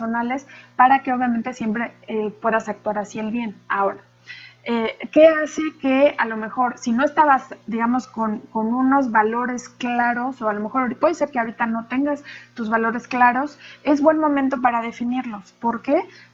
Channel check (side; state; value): both; identical; correlation 1.00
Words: para que obviamente siempre puedas actuar hacia el bien. Ahora, ¿qué hace que a lo mejor, si no estabas, digamos, con unos valores claros, o a lo mejor puede ser que ahorita no tengas tus valores claros, es buen momento para definirlos? ¿Por qué?